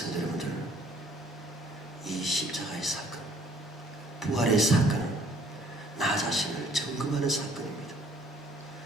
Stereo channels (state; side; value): normal; both; correlation 0.60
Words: 여러분들, 이 십자가의 사건, 부활의 사건은 나 자신을 점검하는 사건입니다.